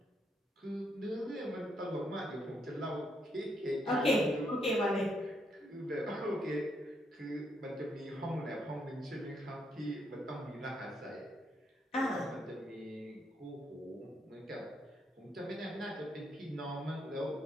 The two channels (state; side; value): normal; both; correlation 0.76